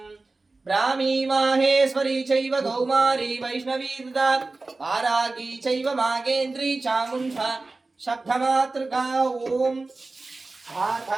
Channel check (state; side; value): quieter; left; 3.4 dB